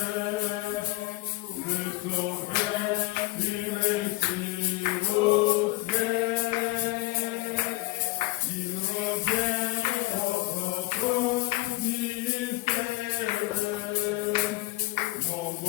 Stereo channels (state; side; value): quieter; right; 20.9 dB